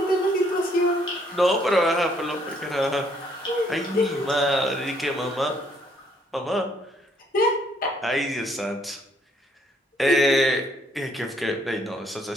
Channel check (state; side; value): normal; both; correlation 0.67